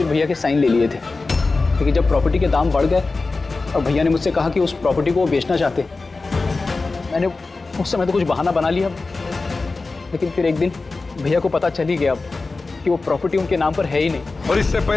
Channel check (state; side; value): quieter; right; 3.7 dB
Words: भैया के साइन ले लिए थे। लेकिन जब प्रॉपर्टी के दाम बढ़ गए और भैया ने मुझसे कहा कि उस प्रॉपर्टी को वो बेचना चाहते, मैंने उस समय तो कुछ बहाना बना लिया, लेकिन फिर एक दिन भैया को पता चल ही गया कि वो प्रॉपर्टी उनके नाम पर है ही नहीं। और इससे